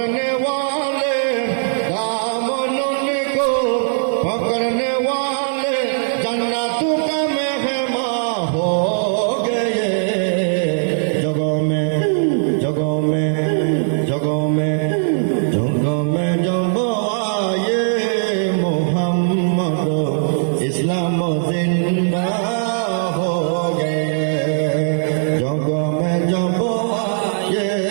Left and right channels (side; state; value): left; silent; digital silence